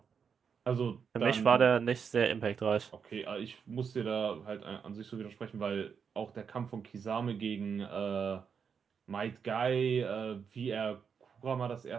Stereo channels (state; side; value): quieter; left; 6.6 dB